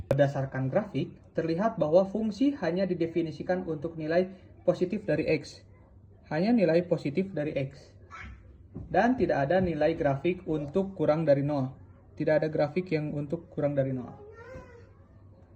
Berdasarkan grafik, terlihat bahwa fungsi hanya didefinisikan untuk nilai positif dari x. Hanya nilai positif dari x. Dan tidak ada nilai grafik untuk kurang dari 0. tidak ada grafik yang untuk kurang dari 0.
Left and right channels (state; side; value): identical; both; correlation 1.00